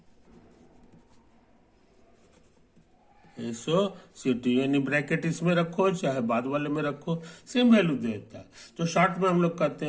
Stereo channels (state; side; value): identical; both; correlation 1.00